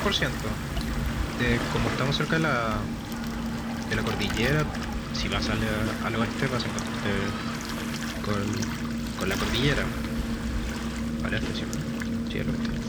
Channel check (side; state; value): both; identical; correlation 1.00